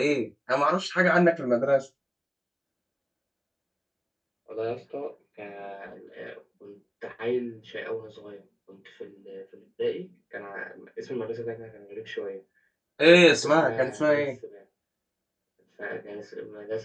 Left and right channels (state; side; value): identical; both; correlation 1.00